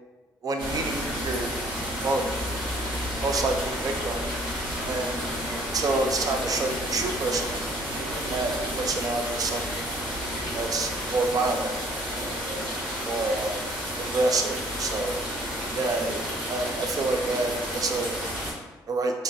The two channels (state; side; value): normal; both; correlation 0.57